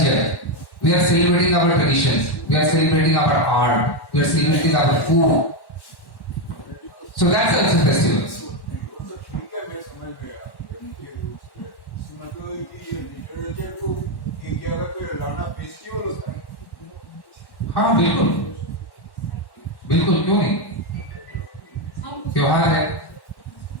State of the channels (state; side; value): late; right; 1.1 ms